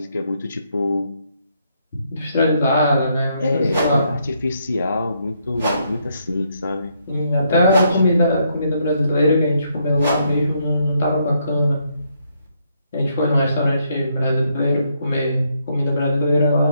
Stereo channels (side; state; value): both; inverted; correlation -0.75